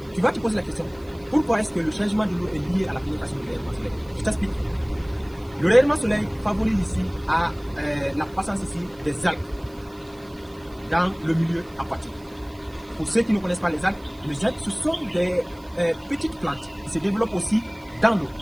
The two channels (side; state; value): right; noise; hiss, 27 dB below the sound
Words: tu vas te poser la question, pourquoi est-ce que le changement de l'eau est lié à la pénétration du rayonnement solaire? Je t'explique. Le rayonnement solaire favorise ici à la croissance ici des algues dans le milieu aquatique. Pour ceux qui ne connaissent pas les algues ce sont des petites plantes qui se développent aussi dans l'eau.